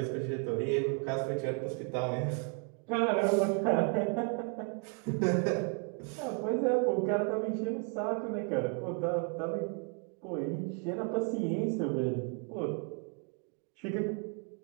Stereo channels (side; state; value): left; quieter; 38.0 dB